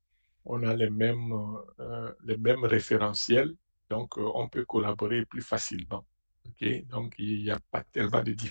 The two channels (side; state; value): both; inverted; correlation -1.00